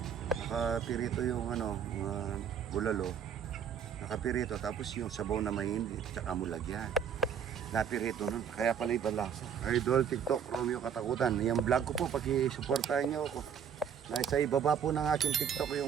nakapirito yung ano, bulalo, nakapirito, tapos yung sabaw na mahindi, tsaka mo lagyan. Napirito nun, kaya pala ibang lasa. Idol, TikTok, Romeo Katakutan. Yung vlog ko po, pag-supportahan nyo ako. Nasa ibaba po ng aking TikTok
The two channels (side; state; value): left; quieter; 7.9 dB